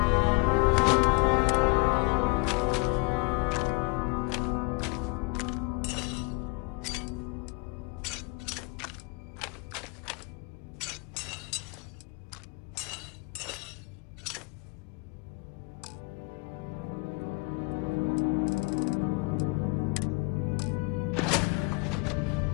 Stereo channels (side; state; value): right; quieter; 28.6 dB